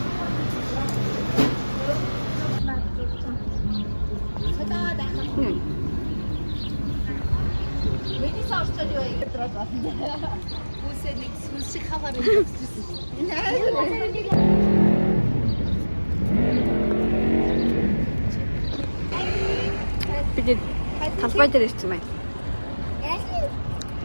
Bu senin sushi kavarı. Бид талбай дээр ирсэн байна.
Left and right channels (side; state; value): both; inverted; correlation -1.00